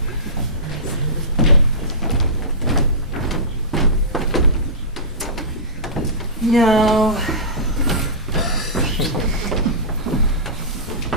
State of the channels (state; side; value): normal; both; correlation -0.19